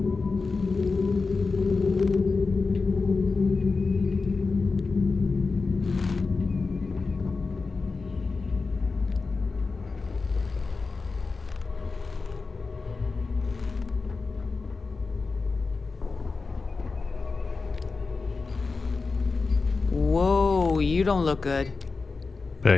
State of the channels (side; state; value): right; quieter; 4.2 dB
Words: Whoa, you don't look good.